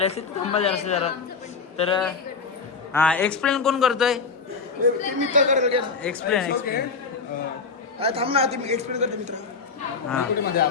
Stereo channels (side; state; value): right; quieter; 4.9 dB